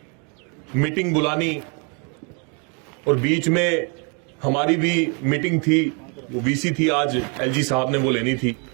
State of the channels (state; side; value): quieter; left; 34.8 dB